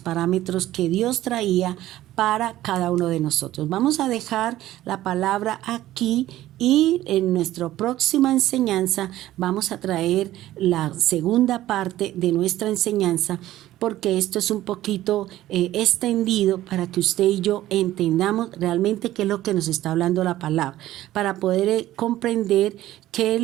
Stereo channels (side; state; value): left; quieter; 14.6 dB